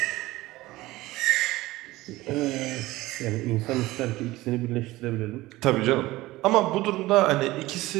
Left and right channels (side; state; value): left; quieter; 18.4 dB